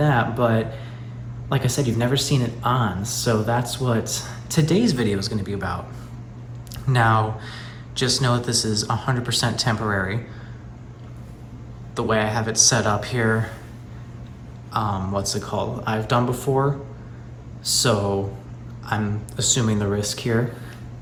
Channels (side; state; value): both; identical; correlation 1.00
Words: but like I said, you've never seen it on, so that's what today's video is going to be about. Now, just know that this is 100% temporary. The way I have it set up here, what's it called? I've done before, so I'm assuming the risk here